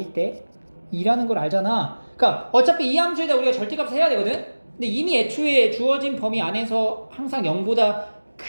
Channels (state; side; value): inverted; both; correlation -1.00